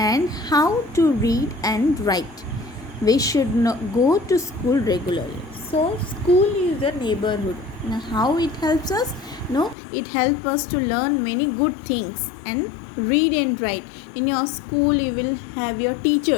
how to read and write. We should go to school regularly. So school is a neighborhood. Now how it helps us? No, it helps us to learn many good things and read and write. In your school you will have your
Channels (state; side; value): drops out; right; at 9.8 s